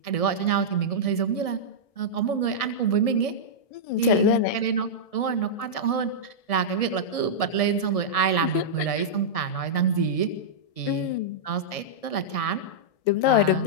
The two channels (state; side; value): late; right; 1.6 ms